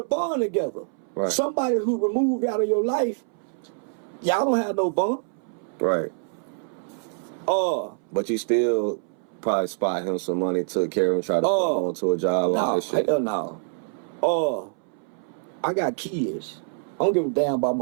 bond together. Right. Somebody who removed out of your life, y'all don't have no bond. Right. But you still probably spot him some money, took care of him, tried to put him onto a job, all that shit. Hell no. I got kids. I don't give a damn about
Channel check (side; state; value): left; silent; 61 dB below the other